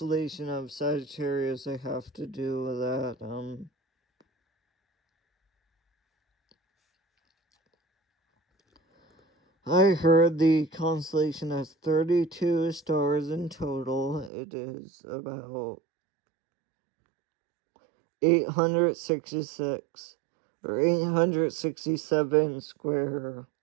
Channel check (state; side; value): drops out; left; at 14.3 s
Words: of Sagittarius, I have to do with that. I heard the constellation has 32 stars in total. It is about 866 or 867 square